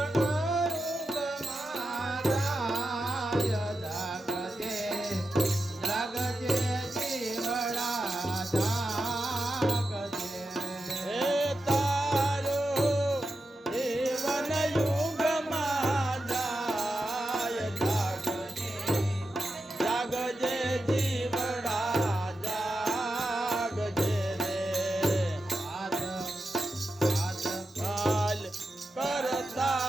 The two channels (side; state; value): both; normal; correlation 0.90